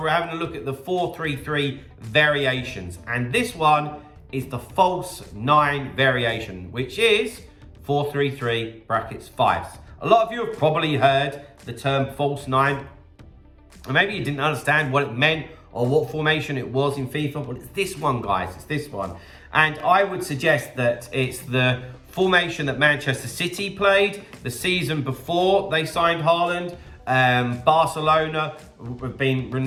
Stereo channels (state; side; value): identical; both; correlation 1.00